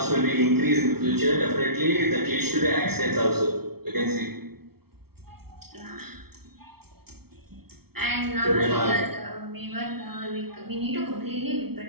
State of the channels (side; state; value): left; late; 0.95 ms